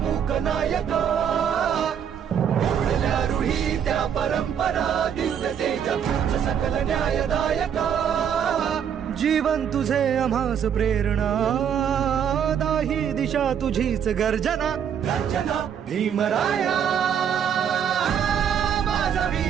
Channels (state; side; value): quieter; left; 8.3 dB